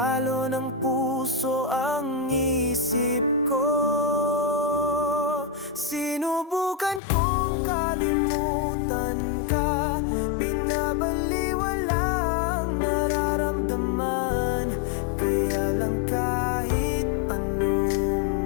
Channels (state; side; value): drops out; right; at 7.0 s